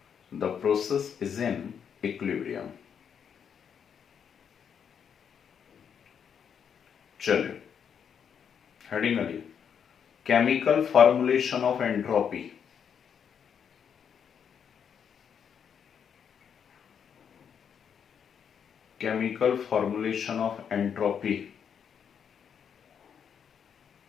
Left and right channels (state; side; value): quieter; right; 7.6 dB